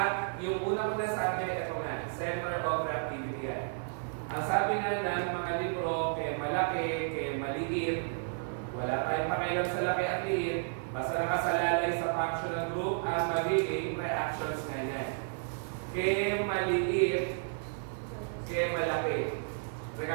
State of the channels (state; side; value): silent; left; 56 dB below the other